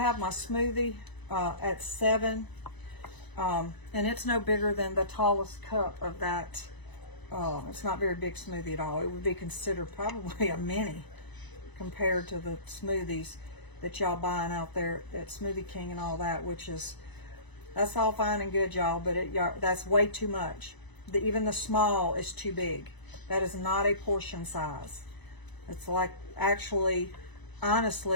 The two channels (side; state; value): right; late; 1.0 ms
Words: my smoothie at 7. And it's no bigger than the tallest cup of that. It's not very big smoothie at all. It would be considered probably a mini compared to the smoothies that y'all buying out there at Smoothie King and all that, which is, that's all fine and good, y'all, but that's way too much. Even the small is too big. That is not a portion size. It's like, actually,